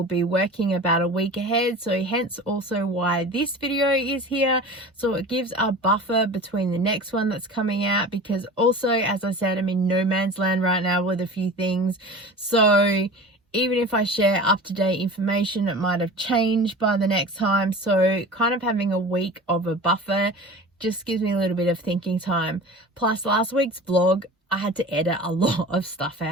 be working about a week ahead, so hence also why this video is here. So it gives a buffer between the next one that's coming out, because also, as I said, I'm in no man's land right now with a few things. So even if I share up-to-date information, it might have changed by the next time. So kind of having a week of a buffer just gives me a little bit of thinking time. Plus last week's vlog, I had to edit a lot of stuff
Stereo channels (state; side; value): normal; both; correlation 0.37